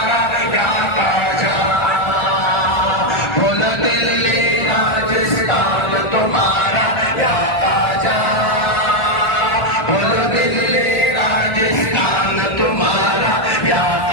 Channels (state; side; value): late; right; 1.4 ms